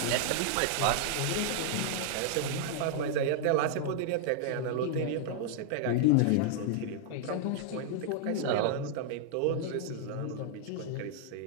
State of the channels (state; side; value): different; both; correlation -0.01